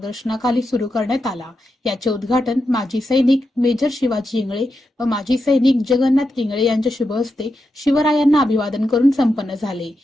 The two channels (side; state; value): both; normal; correlation 0.87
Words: सुरू करण्यात आला। याचे उद्घाटन माजी सैनिक मेजर शिवाजी इंगळे व माजी सैनिक जगन्नाथ इंगळे यांच्या शुभ हस्ते शिवरायांना अभिवादन करून संपन्न झाले।